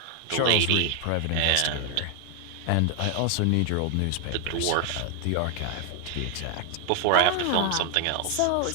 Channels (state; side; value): different; both; correlation 0.00